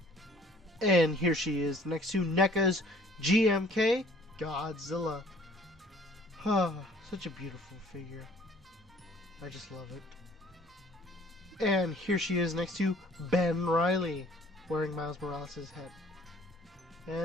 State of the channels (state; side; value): normal; both; correlation 0.56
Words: And here she is next to NECA's GMK Godzilla. Such a beautiful figure. I just love it. And here she is next to Ben Reilly, wearing Miles Morales' head.